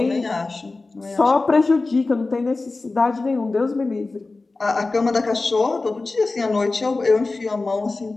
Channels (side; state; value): right; quieter; 3.5 dB